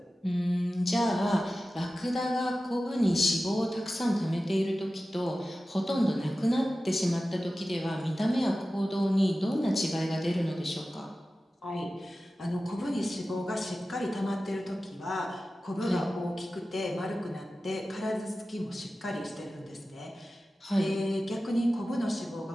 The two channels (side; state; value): both; normal; correlation 0.95